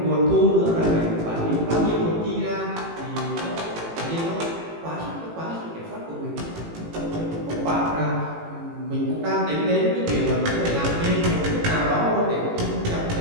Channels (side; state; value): left; late; 18 ms